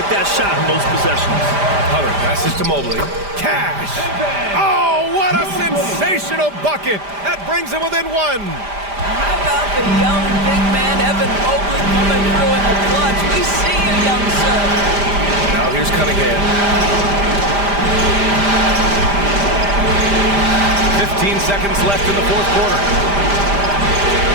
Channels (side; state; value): left; late; 5.0 ms